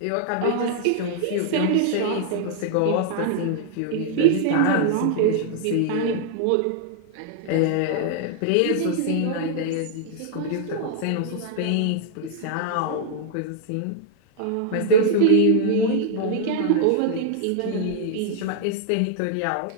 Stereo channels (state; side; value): different; both; correlation -0.01